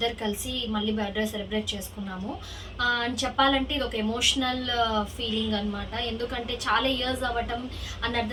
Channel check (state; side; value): identical; both; correlation 1.00